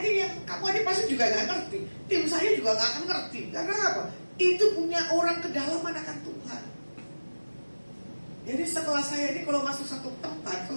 yang kamu aja pasti juga nggak ngerti. Tim saya juga nggak akan ngerti. Karena apa? Itu punya orang kedalaman akan Tuhan. Jadi setelah saya ini kalau masuk satu tempat,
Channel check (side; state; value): both; inverted; correlation -1.00